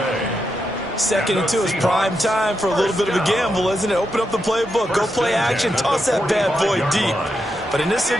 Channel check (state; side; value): normal; both; correlation 0.84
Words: 2nd and 2 is prime time for a little bit of a gamble, isn't it? Open up the playbook, go play action, toss that bad boy deep. But in this